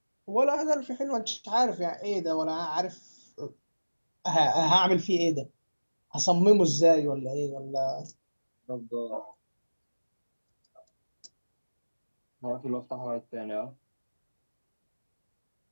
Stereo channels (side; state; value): both; inverted; correlation -1.00